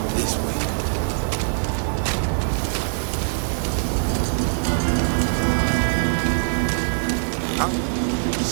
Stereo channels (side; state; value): left; silent; 64 dB below the other